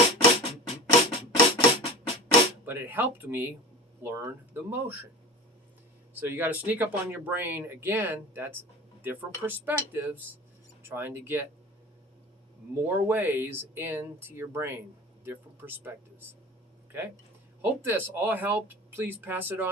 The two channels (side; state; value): both; normal; correlation 0.33